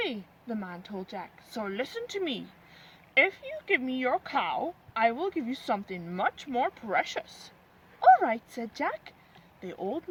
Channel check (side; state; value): both; identical; correlation 1.00